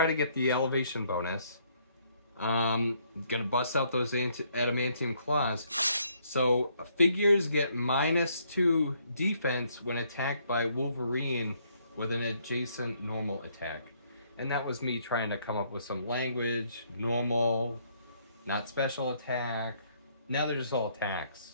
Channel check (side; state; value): both; inverted; correlation -0.68